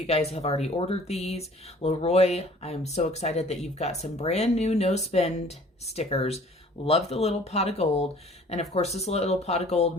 guys have already ordered these. Leroy, I'm so excited that you've got some brand new no spend stickers. Love the little pot of gold. And of course, this little pot of gold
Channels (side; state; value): both; normal; correlation 0.52